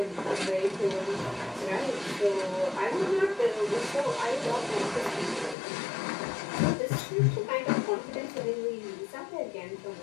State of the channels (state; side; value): drops out; right; at 5.6 s